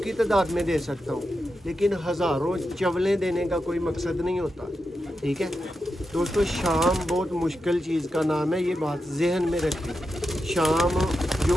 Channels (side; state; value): both; normal; correlation 0.88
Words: तादाद में दे सकता हूँ, लेकिन हज़ारों चवलें देने का कोई मकसद नहीं होता। ठीक है दोस्तों, शाम बहुत मुश्किल चीज़ का नाम है, ये बात जहन में रखें। शाम जो